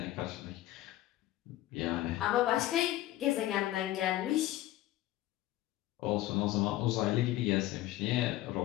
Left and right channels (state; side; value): quieter; right; 15.2 dB